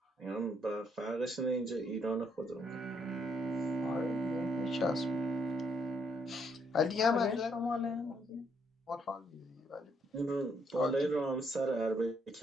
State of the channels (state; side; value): normal; both; correlation 0.73